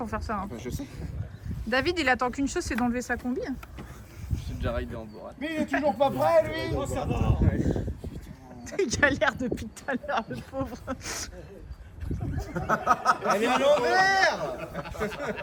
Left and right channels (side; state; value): both; identical; correlation 1.00